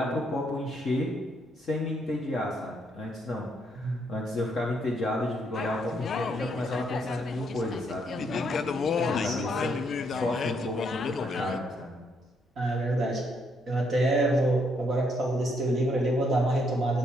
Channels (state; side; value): normal; both; correlation 0.73